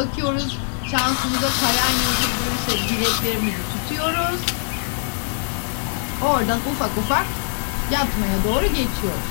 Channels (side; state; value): right; silent; digital silence